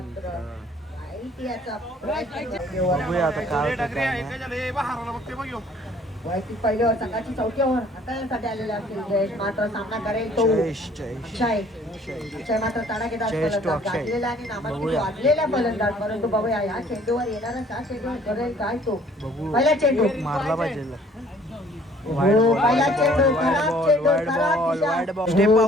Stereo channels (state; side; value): normal; both; correlation 0.57